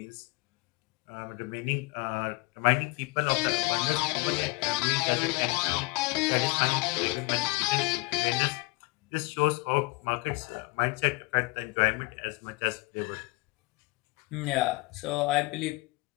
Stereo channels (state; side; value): quieter; right; 24.4 dB